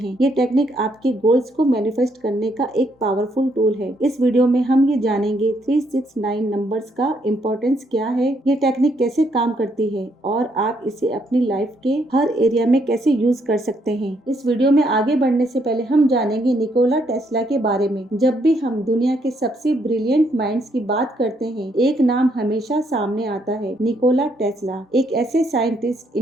ये टेक्निक आपके गोल्स को मैनिफेस्ट करने का एक पावरफुल टूल है। इस वीडियो में हम ये जानेंगे 369 नंबर्स का इम्पोर्टेंस क्या है, ये टेक्निक कैसे काम करती है और आप इसे अपनी लाइफ के हर एरिया में कैसे यूज कर सकते हैं। इस वीडियो में आगे बढ़ने से पहले हम जानेंगे निकोला टेस्ला के बारे में। जब भी हम दुनिया के सबसे ब्रिलियंट माइंड्स की बात करते हैं, एक नाम हमेशा सामने आता है, निकोला टेस्ला। एक ऐसे साइंटिस्ट,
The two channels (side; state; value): both; normal; correlation 0.73